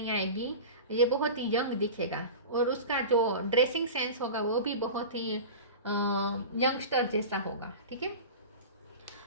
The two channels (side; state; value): both; inverted; correlation -0.32